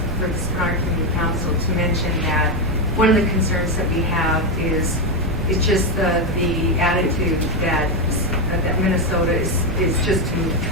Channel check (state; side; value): noise; right; rumble, 7 dB below the sound